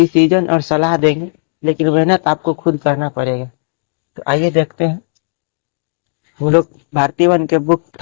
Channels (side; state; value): right; silent; digital silence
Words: और सलाह देंगे, लेकिन मेहनत आपको खुद करना पड़ेगा। तो आइए देखते हैं। हम लोग भारतीय वन के बुक